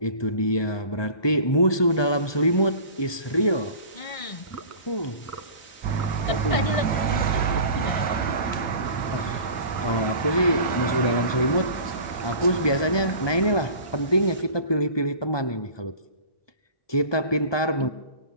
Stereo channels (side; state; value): right; late; 1.2 ms